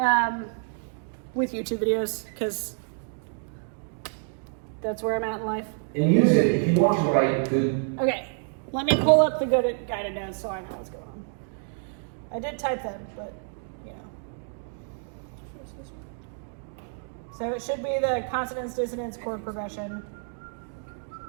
with YouTube videos because that's where I'm at in life. And use it if you want to write good. Okay, let me pull up the good guided notes so I know what's going on. I did type them, but you know. So it should be the consonance, dissonance, chord progression.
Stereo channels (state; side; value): silent; left; 59 dB below the other